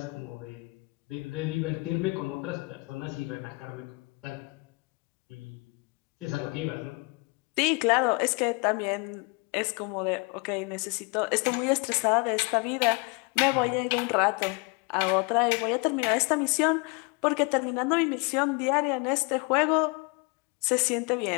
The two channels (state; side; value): quieter; right; 29.9 dB